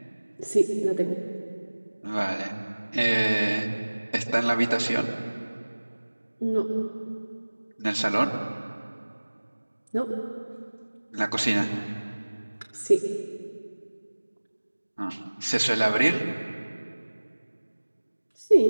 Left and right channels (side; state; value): both; inverted; correlation -1.00